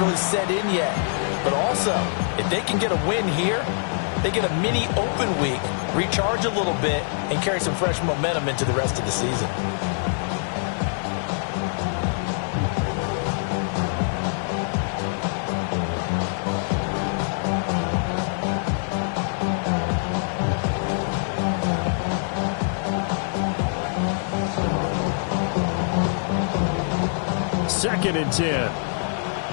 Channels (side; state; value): right; silent; digital silence